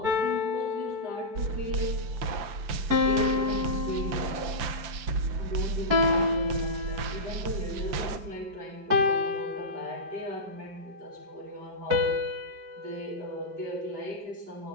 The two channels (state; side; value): late; left; 5.8 ms